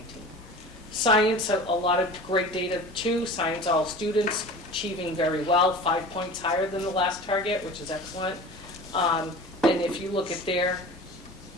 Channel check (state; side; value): normal; both; correlation 0.38